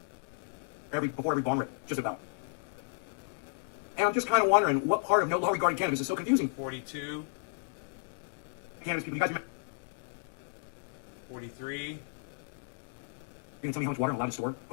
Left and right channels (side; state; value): right; silent; digital silence